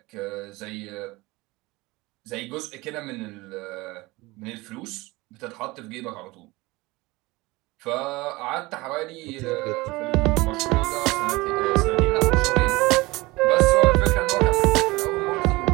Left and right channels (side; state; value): left; quieter; 21.8 dB